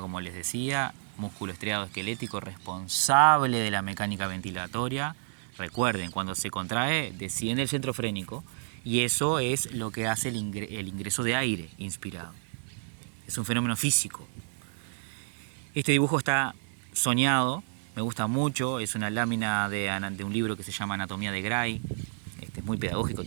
les decía, músculo estriado esquelético responsable de la mecánica ventilatoria. Recuerden, cuando se contrae, desciende el centro frénico, y eso es lo que hace el ingreso de aire inspirado. Es un fenómeno físico. Este dibujo está soñado, me gusta mucho, es una lámina de un libro que se llama Anatomía de Gray. Es muy pedagógico,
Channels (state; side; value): silent; left; 58 dB below the other